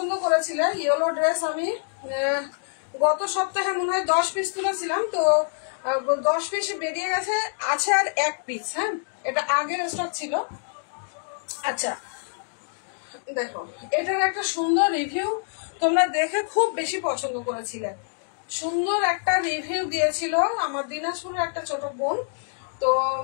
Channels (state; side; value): silent; right; digital silence